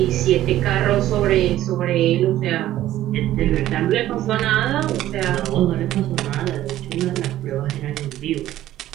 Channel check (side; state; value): left; quieter; 13.7 dB